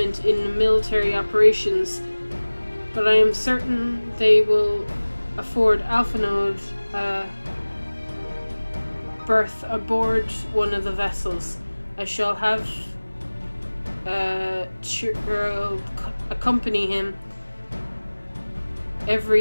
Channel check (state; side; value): inverted; both; correlation -1.00